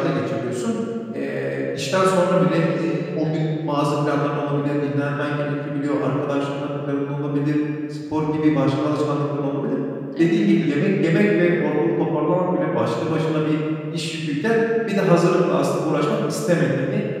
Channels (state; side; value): identical; both; correlation 1.00